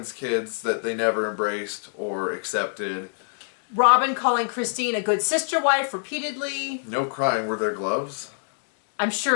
kids that they never embraced or accepted. Robin calling Christine a good sister wife repeatedly. No crying. Were there gloves? I'm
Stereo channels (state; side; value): silent; right; 62 dB below the other